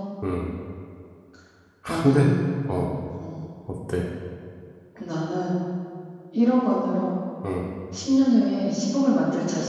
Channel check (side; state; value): both; identical; correlation 1.00